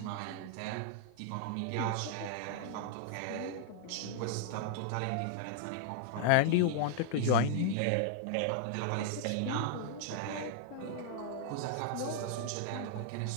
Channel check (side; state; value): both; different; correlation -0.01